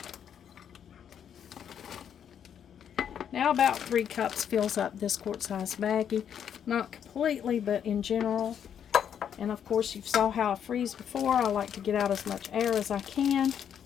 Now about 3 cups fills up this quart-sized baggie. Not completely, but in general. And of course, you saw how I freeze before. I like to get out as much air as I can.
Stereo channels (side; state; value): right; quieter; 8.6 dB